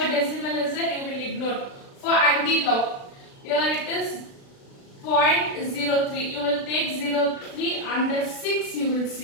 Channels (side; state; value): right; late; 36 ms